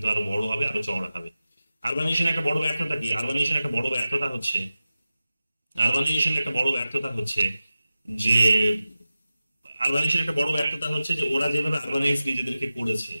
আরো বড় হবে, আরো চওড়া হবে। আরবানাইজেশন একটা বড় ব্যর্থতা কি? আরবানাইজেশন একটা বড় ব্যর্থতা হচ্ছে, যে ওরা যেভাবে আরবানাইজ নিজেদেরকে করেছে,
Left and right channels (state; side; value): inverted; both; correlation -0.94